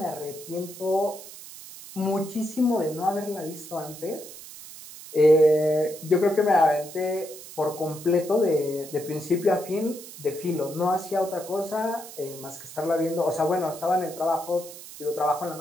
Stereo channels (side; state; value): right; noise; hiss, 15 dB below the sound